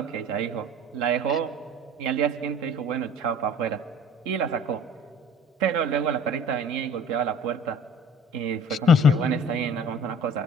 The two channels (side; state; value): both; normal; correlation 0.46